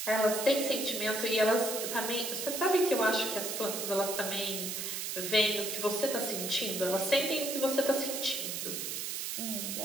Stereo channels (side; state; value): right; noise; hiss, 3 dB below the sound